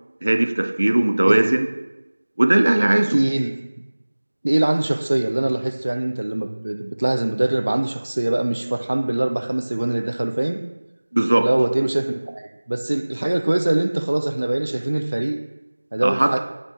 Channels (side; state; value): both; inverted; correlation -1.00